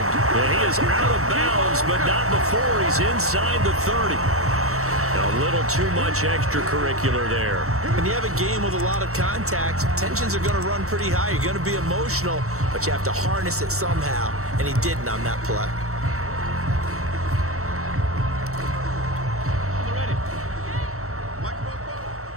And he is out of bounds, but not before he's inside the 30. A little too much extracurricular there. When you have a game with a lot of contact, tensions are going to run pretty high. You're going to be emotional, but you have to harness it somehow, and he didn't on that play.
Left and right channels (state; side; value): late; left; 0.64 ms